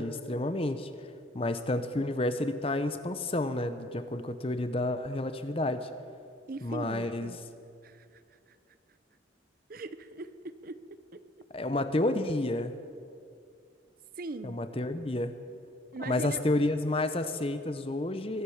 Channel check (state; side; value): normal; both; correlation 0.59